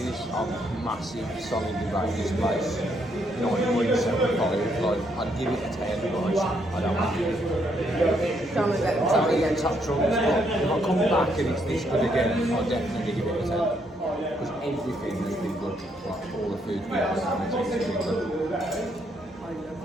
I'm massive solidly rate this place 9.75. Like I'd give it a 10, but I don't want it. Don't get them I'll get top trumps, but if I come back and it's this good again, I'll definitely give it a 10. Because everything has been good, like all the food we have, and it's been good. I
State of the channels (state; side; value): normal; both; correlation 0.73